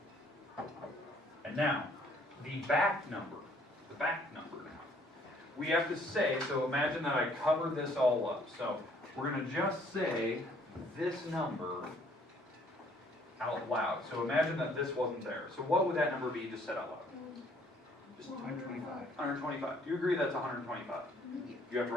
And now, the back number. The back number now. We have to say, so imagine that I covered this all up. So we're going to just say this number out loud. So imagine that this wasn't there. So what would that number be just said out loud? Just 125. 125. Do you agree that's 125? You have to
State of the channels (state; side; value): normal; both; correlation 0.62